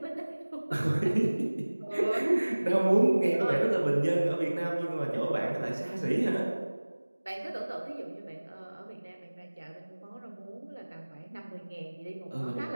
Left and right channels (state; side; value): inverted; both; correlation -1.00